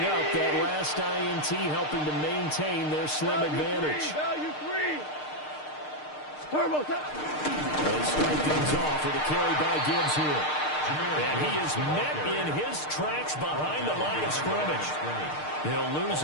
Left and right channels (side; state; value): right; late; 6.6 ms